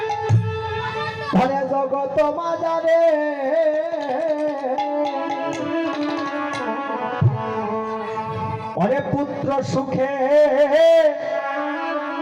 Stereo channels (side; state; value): both; identical; correlation 1.00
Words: ধরে জগৎ মাঝারে অরে পুত্র সুখে,